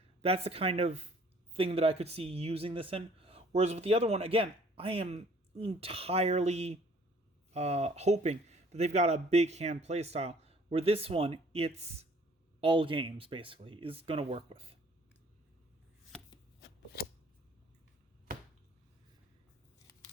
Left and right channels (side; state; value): both; normal; correlation 0.57